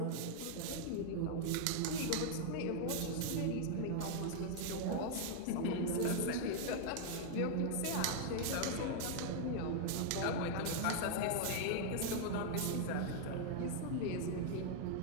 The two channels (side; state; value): both; different; correlation 0.00